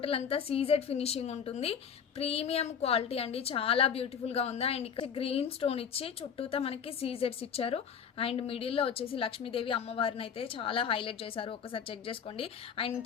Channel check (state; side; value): quieter; right; 7.5 dB